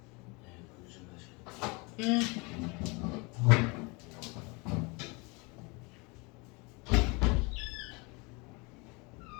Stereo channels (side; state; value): right; quieter; 28.3 dB